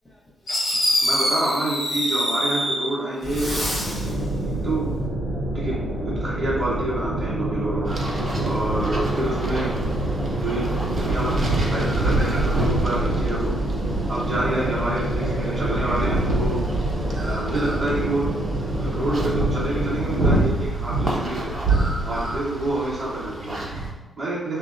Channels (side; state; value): both; normal; correlation 0.71